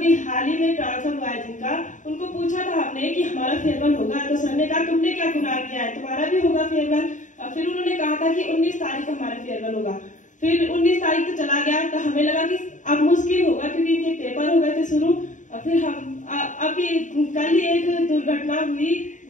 हाल ही में ट्रांसफर हुआ है जिनका, उनको पूछा था हमने कि हमारा फेयरवेल होगा, तो सर ने कहा तुमने क्या गुनाह किया है, तुम्हारा भी होगा फेयरवेल। फिर उन्होंने कहा था कि 19 तारीख को हमारा फेयरवेल होगा। फिर 19 तारीख तो चला गया, तो हमें लगा कि अब मुश्किल होगा, क्योंकि इनके पेपर हो गए थे शुरू। फिर हम अभी कल ही एक दुर्घटना हुई,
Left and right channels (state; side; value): late; right; 0.36 ms